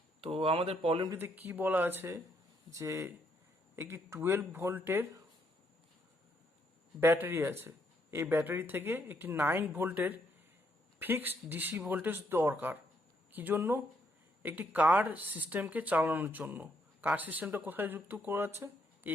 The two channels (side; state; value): both; normal; correlation 0.73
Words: তো আমাদের প্রবলেমটিতে কি বলা আছে যে একটি 12 ভোল্টের battery আছে, এই ব্যাটারি থেকে একটি 9 ভোল্টের ফিক্সড ডিসি ভোল্টেজ দরকার। কি জন্য? একটি কার সিস্টেমকে চালানোর জন্য। কার সিস্টেমটা কোথায় যুক্ত করা আছে?